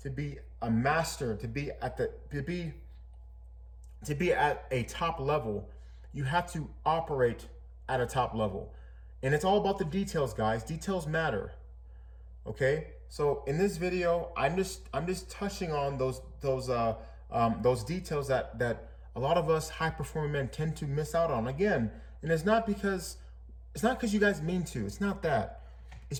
a master, to be at a top level, you have to operate at a top level. And it's all about the details, guys. Details matter. Okay? So in this video, I'm just touching on those details that a lot of us high performing men tend to miss out on. Again, and it's not because you guys mean to. It's not that. It's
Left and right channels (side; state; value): both; identical; correlation 1.00